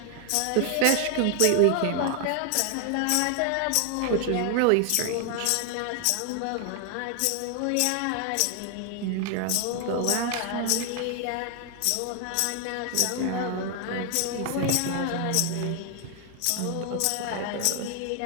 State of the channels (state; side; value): different; both; correlation 0.00